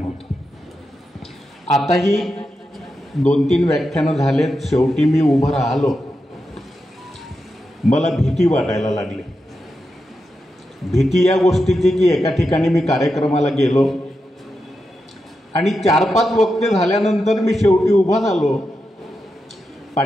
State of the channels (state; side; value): normal; both; correlation 0.88